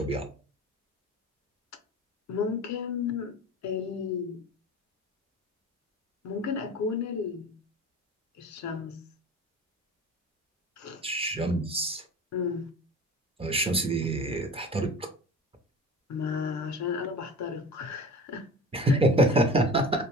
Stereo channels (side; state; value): both; normal; correlation 0.37